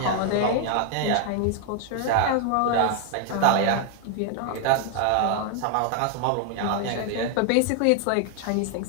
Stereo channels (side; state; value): both; different; correlation 0.00